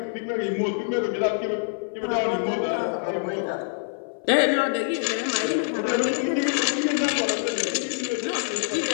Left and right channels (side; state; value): right; silent; 58 dB below the other